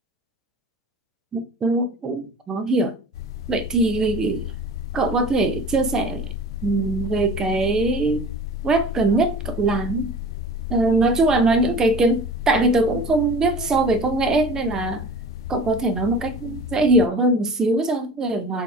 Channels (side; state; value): both; normal; correlation 0.40